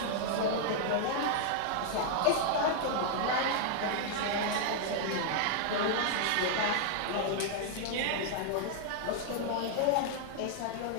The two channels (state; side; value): different; both; correlation 0.00